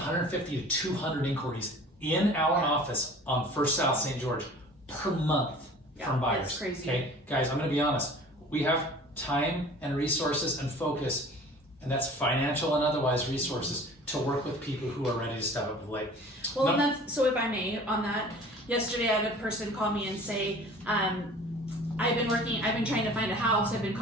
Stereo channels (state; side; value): normal; both; correlation 0.45